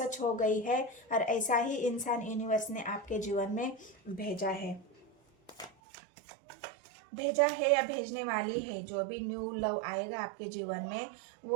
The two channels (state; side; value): drops out; left; at 5.7 s